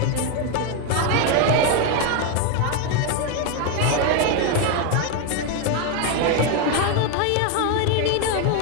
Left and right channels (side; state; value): both; different; correlation 0.02